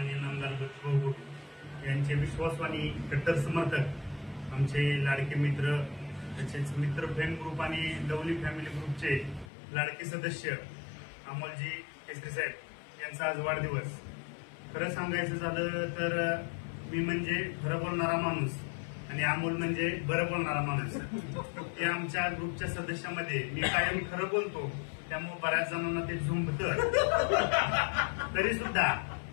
नामदार बच्चूभाऊ कडू यांचे विश्वासू आणि कट्टर समर्थक आमचे लाडके मित्र तसेच मित्र फ्रेंड ग्रुप आणि लवली फॅमिली ग्रुपचे लाडके सदस्य अमोलजी केसरी साहेब यांचा आज वाढदिवस। खरं सांगायचं झालं तर मी म्हणजे खरं बोलणारा माणूस आणि अमोल म्हणजे बरं बोलणारा माणूस। हे आमच्या ग्रुपच्या सदस्यामध्ये मी कायम खरं बोलतो, त्यामुळे बऱ्याच जणांना ते झुंबतं। तरी सुद्धा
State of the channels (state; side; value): drops out; right; at 9.5 s